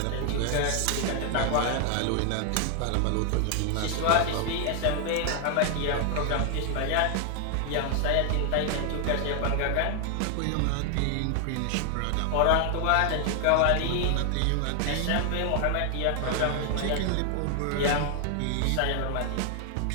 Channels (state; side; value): different; both; correlation 0.00